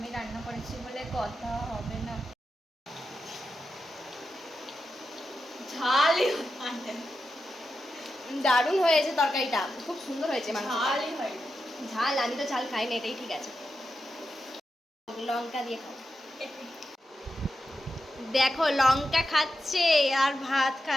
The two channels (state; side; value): normal; both; correlation 0.89